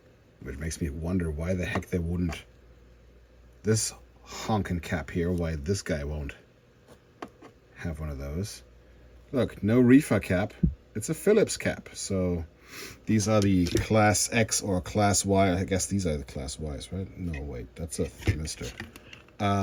Which makes me wonder why the heck they wouldn't. This honkin' cap here, why this guy won't have one of those. Look, no reefer cap. It's a Phillips cap. So these are the Class X or Class Y. I guess these are the Class Ys, right? No, wait, that's a Mister.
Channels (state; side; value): identical; both; correlation 1.00